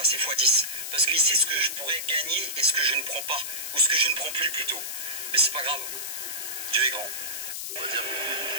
x 10. Parce qu'il sait ce que je pourrais gagner et ce que je ne prends pas. Ou ce que je ne prends plus plutôt. Mais c'est pas grave. Dieu est grand. On va dire,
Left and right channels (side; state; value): left; noise; hiss, 5 dB below the sound